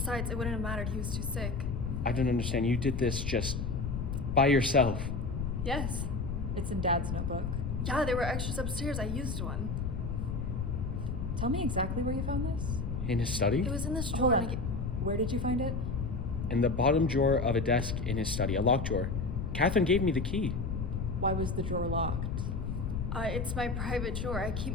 it wouldn't have mattered. He was too sick. I don't understand. You did this just by yourself. Yes. It's in Dad's notebook. Yeah, there were extras upstairs. I used one. Tell me exactly where you found this. In his study? It was in this Hold drawer. on. Where did you find it? In the bottom drawer of a desk in his study, a locked drawer. Catherine gave me the key. Why was the drawer locked? It's my private drawer. I keep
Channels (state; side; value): noise; left; rumble, 3 dB below the sound